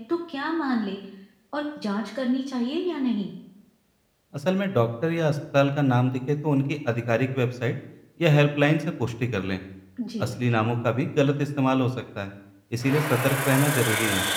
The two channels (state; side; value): identical; both; correlation 1.00